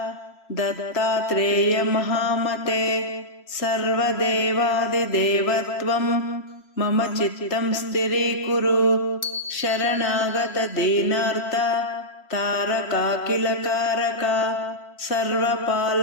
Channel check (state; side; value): late; right; 3.0 ms